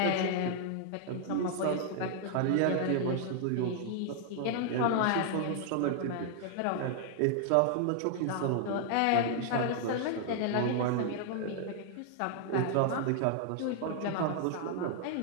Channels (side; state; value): both; different; correlation 0.00